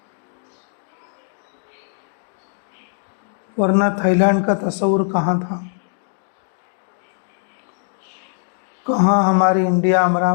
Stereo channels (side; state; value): right; silent; digital silence